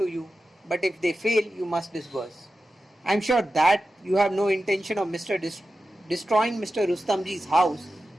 you, but if they fail, you must disperse. I am sure that you have no intention of destroying Mr. Rustamji's house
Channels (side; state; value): both; normal; correlation 0.93